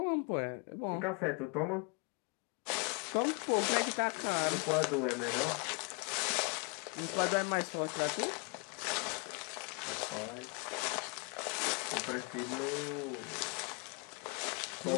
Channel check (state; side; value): quieter; right; 34.4 dB